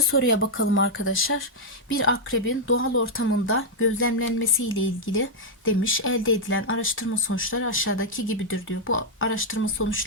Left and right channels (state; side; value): normal; both; correlation -0.03